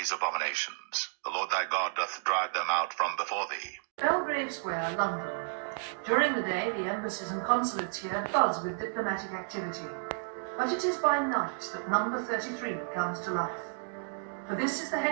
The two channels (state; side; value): silent; left; digital silence